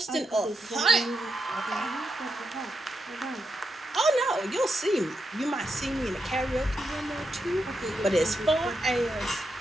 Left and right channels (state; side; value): normal; both; correlation 0.85